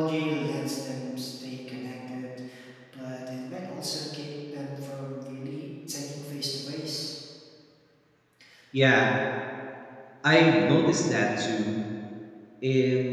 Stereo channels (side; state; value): both; identical; correlation 1.00